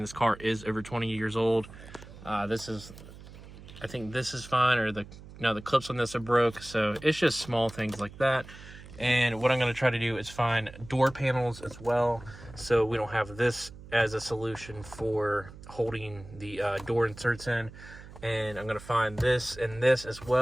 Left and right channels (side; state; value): right; noise; hum, 17 dB below the sound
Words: car is over 20 years old. I think this is fine, or the clips on this are broke, so it's just small things like that. And what I'm going to try to do is find door panels as well, so we don't have this as a solution for holding the door inserts in. And I'm going to find this and this as